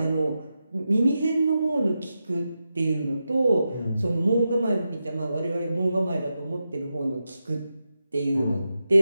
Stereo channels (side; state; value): both; inverted; correlation -0.89